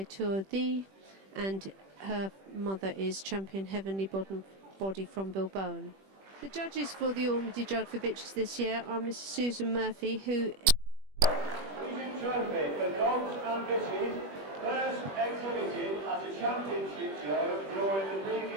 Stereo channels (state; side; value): late; left; 21 ms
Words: Tourdi and her mother is champion Heavenly Body from Bilbao. The judges for the Ormsby Jug for Bitches this year are Mrs. Susan Murphy, who Regent Trophy for dogs and bitches, first exhibited at a championship show during the